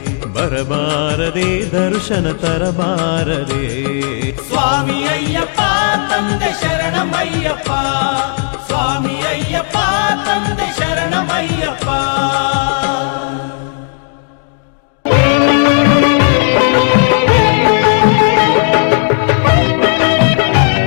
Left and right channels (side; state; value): right; silent; 57 dB below the other